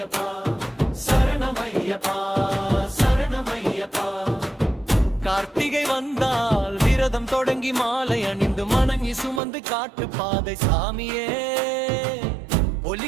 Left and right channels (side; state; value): left; drops out; at 9.4 s